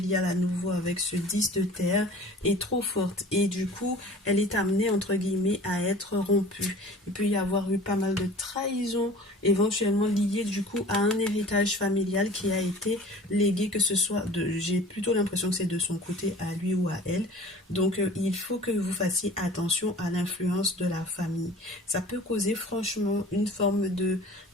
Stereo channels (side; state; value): both; normal; correlation 0.44